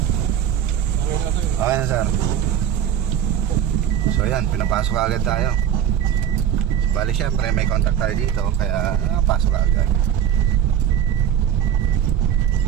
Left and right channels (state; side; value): quieter; left; 9.8 dB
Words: Okay na sir. So ayan, pinapasok agad tayo. So, bali syempre may contact tayo dito, kaya pasok agad.